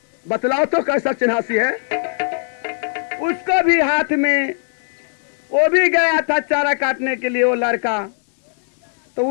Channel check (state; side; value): silent; right; digital silence